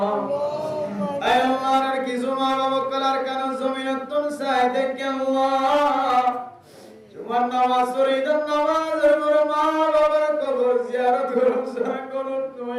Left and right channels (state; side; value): identical; both; correlation 1.00